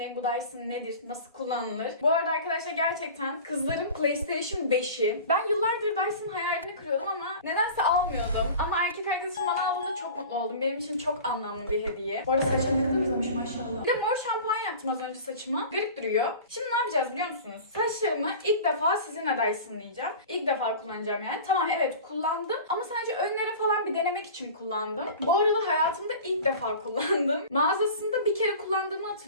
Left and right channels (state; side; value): inverted; both; correlation -0.38